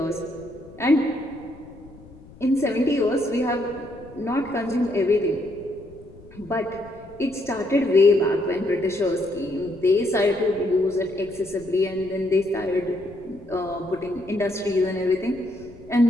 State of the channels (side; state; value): left; noise; rumble, 21 dB below the sound